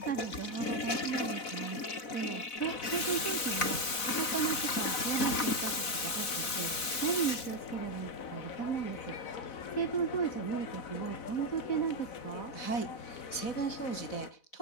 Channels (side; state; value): right; late; 4.0 ms